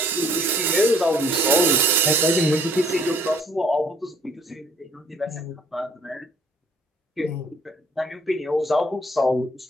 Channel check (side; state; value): both; normal; correlation 0.60